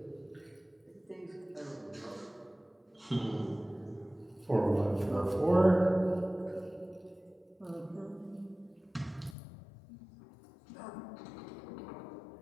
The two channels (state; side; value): drops out; right; at 9.3 s